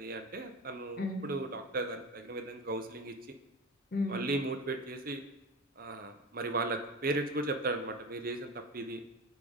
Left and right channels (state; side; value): normal; both; correlation 0.27